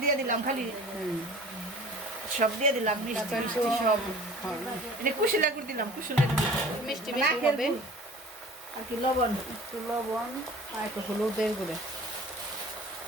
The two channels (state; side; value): normal; both; correlation 0.44